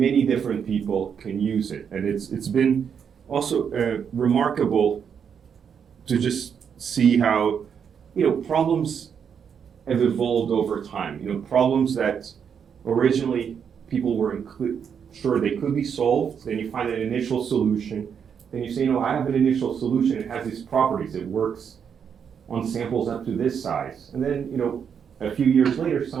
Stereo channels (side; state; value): left; quieter; 7.4 dB